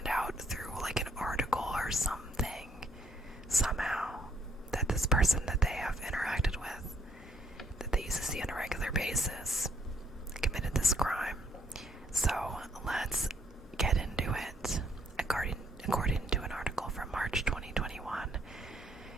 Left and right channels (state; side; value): normal; both; correlation 0.69